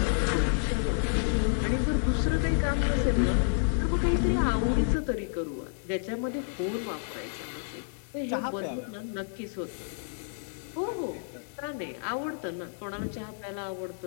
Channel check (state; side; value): silent; right; digital silence